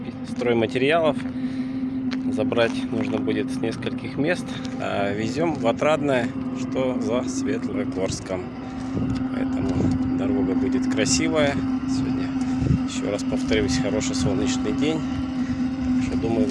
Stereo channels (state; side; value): identical; both; correlation 1.00